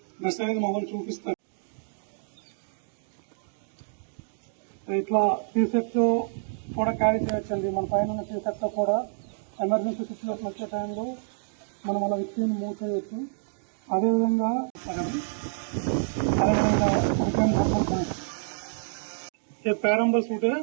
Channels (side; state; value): left; silent; digital silence